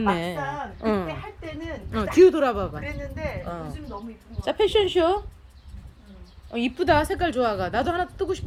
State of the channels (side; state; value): both; identical; correlation 1.00